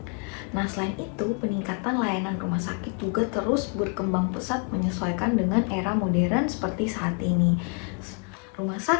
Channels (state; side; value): quieter; right; 35.8 dB